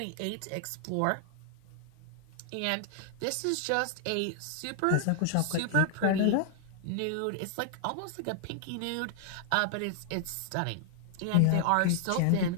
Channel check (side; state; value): both; different; correlation 0.00